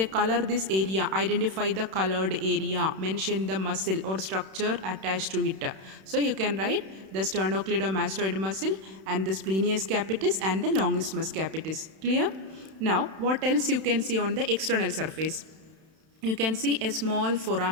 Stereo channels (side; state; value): left; late; 31 ms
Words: color this area, identify the colored area, mention the muscle or structure attached to it. So you can write the sternocleidomastoid muscle and the splenius capitis and the longissimus capitis. Clear? Now what else you can see on the external surface? You can see a small